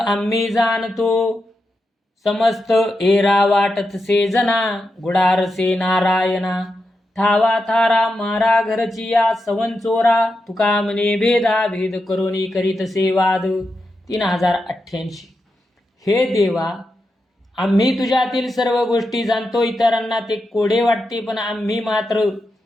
जाणतो, समस्त एरा वाटतसे जना. गुडारसे नारायणा, ठावा थारा मारा घरची या सवन चोरा. तुका म्हणे भेदा भेद करोनी करीतसे वाद. 3088. हे देवा, आम्ही तुझ्यातील सर्व गोष्टी जाणतो. इतरांना ते कोडे वाटते, पण आम्ही मात्र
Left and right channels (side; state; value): both; normal; correlation 0.87